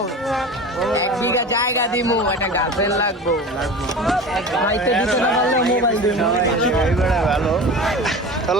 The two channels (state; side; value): normal; both; correlation 0.34